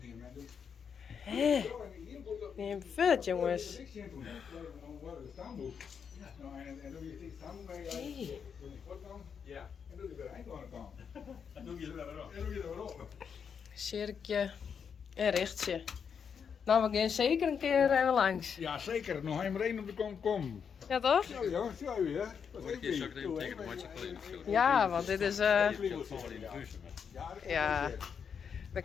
niet meer. Hé. Neem vet, jongens. En dan je het staan mee. Ja. En doe je weer eind aan de kant. En doe je er weer op. Sjerkje en Richtje. Nou, we gaan zeker een keer even langs. Ja, zeker. Nog helemaal één op de kant komen. Ja, toch? Ja, ja, zo hè. Ja, want dit is... Ja, we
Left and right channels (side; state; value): right; quieter; 6.9 dB